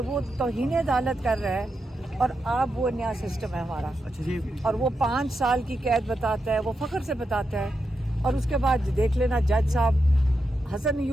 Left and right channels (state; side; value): normal; both; correlation 0.86